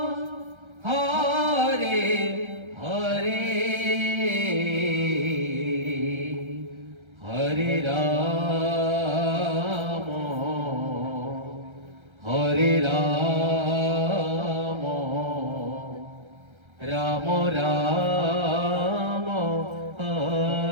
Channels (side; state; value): left; late; 1.3 ms